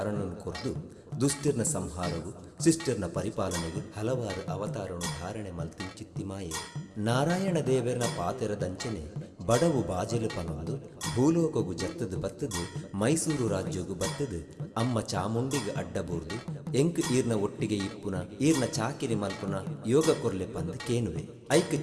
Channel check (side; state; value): both; identical; correlation 1.00